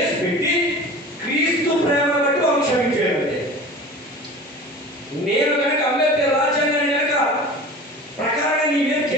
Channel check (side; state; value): both; normal; correlation 0.38